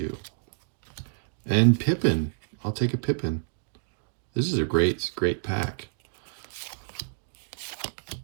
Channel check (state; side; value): silent; left; digital silence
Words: And Pippen. I'll take a Pippen. This is a great pack.